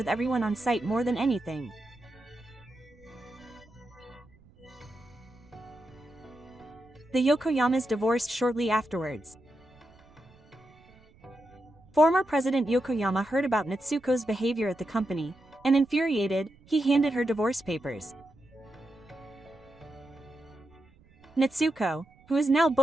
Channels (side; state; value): right; noise; rumble, 28 dB below the sound